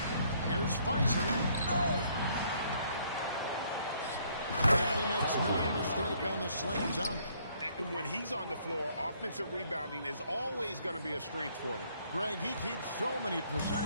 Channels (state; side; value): inverted; both; correlation -0.66